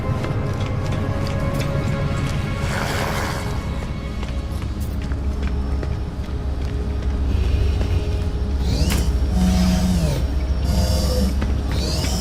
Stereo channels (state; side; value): identical; both; correlation 1.00